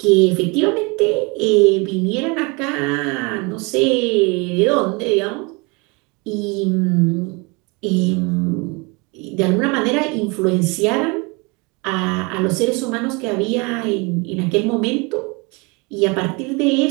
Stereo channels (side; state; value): left; quieter; 28.6 dB